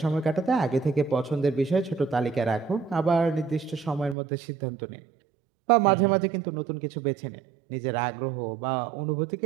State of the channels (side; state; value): left; drops out; at 4.2 s